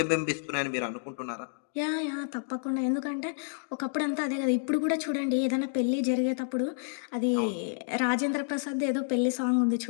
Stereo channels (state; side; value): silent; right; digital silence